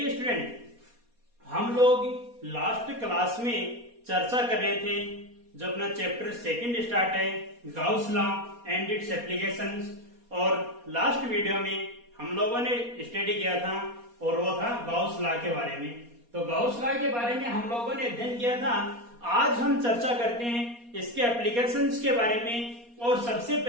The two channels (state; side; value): late; left; 4.2 ms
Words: स्टूडेंट, हम लोग लास्ट क्लास में चर्चा कर रहे थे जो अपना चैप्टर सेकंड स्टार्ट है Gauss law and it's applications, और लास्ट वीडियो में हम लोगों ने स्टडी किया था और वो था गाउस लॉ के बारे में। तो गाउस लॉ के बारे में हम लोगों ने अध्ययन किया था। आज हम चर्चा करते हैं इसके एप्लीकेशंस के बारे में, और सबसे